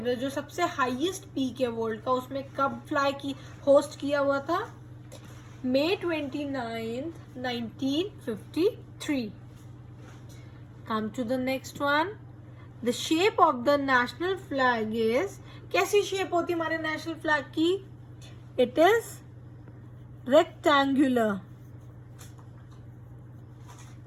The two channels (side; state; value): both; identical; correlation 1.00